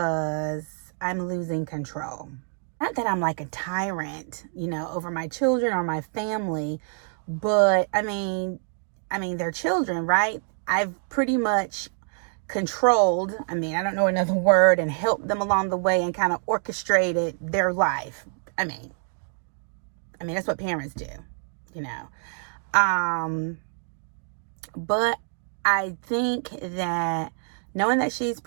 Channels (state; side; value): silent; left; 61 dB below the other